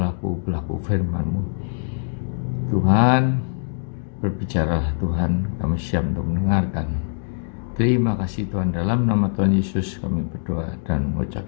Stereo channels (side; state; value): right; silent; digital silence